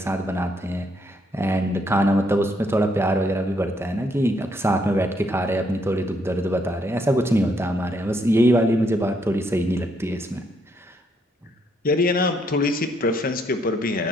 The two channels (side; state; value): both; normal; correlation 0.73